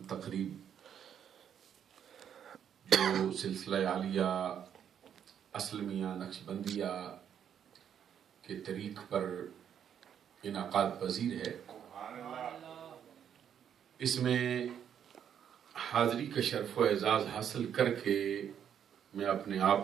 تقریب جو سلسلہ عالیہ اسلمیہ نقشبندیہ کے طریق پر انعقاد پذیر ہے، اس میں حاضری کا شرف و اعزاز حاصل کر کے میں اپنے آپ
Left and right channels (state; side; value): quieter; left; 8.8 dB